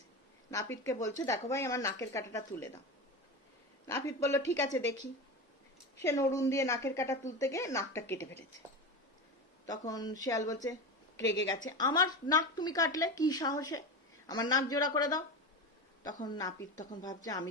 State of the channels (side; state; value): both; normal; correlation 0.23